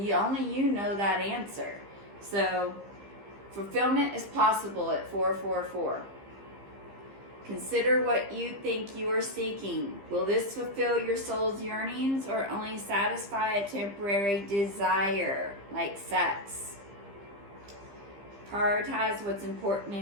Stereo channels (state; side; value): late; left; 15 ms